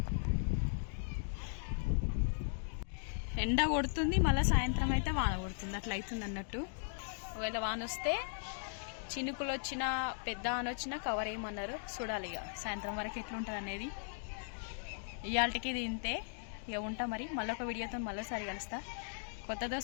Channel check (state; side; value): silent; right; digital silence